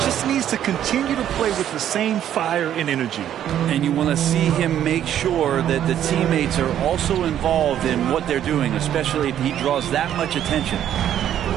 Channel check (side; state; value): left; quieter; 10.7 dB